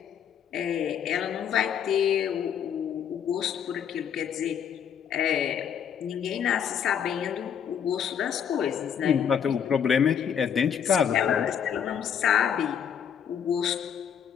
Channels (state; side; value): quieter; right; 8.2 dB